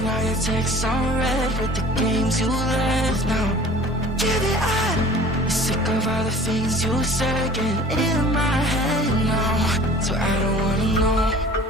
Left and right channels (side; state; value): both; normal; correlation 0.45